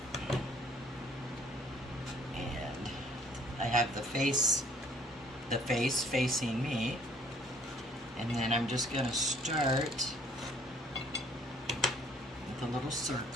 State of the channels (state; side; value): normal; both; correlation 0.59